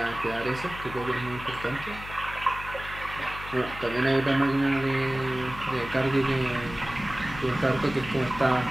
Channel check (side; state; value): left; noise; hum, 13 dB below the sound